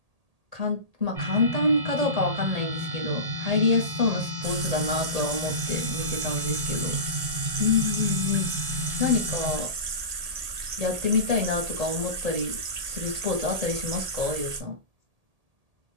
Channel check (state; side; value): late; left; 1.8 ms